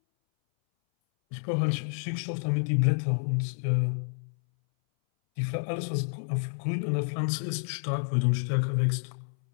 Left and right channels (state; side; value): silent; right; 59 dB below the other